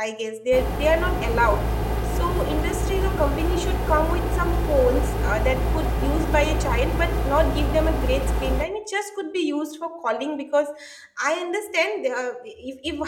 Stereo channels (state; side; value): identical; both; correlation 1.00